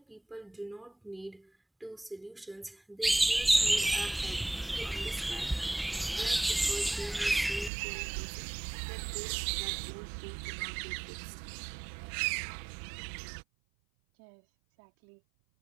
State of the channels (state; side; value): drops out; left; at 7.7 s